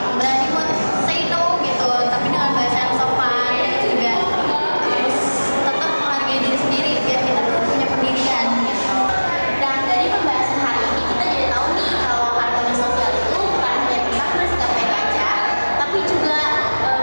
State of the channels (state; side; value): inverted; both; correlation -1.00